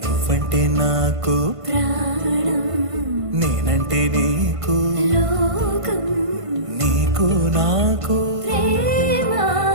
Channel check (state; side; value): late; left; 1.5 ms